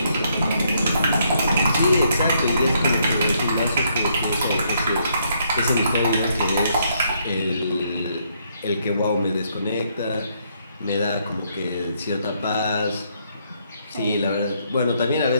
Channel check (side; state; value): both; inverted; correlation -0.73